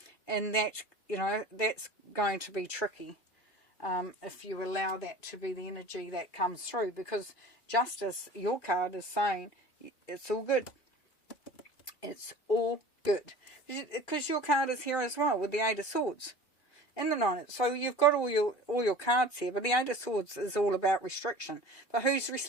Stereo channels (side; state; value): right; late; 2.7 ms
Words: And that, that's going to be tricky if you allow that to be the energy that comes through. Because justice, your card is saying, it's all good. It's all good. Because your card is here as well with the Eight of Swords and the Nine. So you've got all your cards here. But the Eight of Swords is all about restriction. But who's